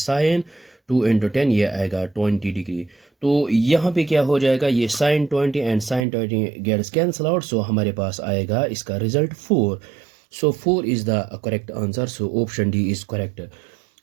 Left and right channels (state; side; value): drops out; left; at 6.1 s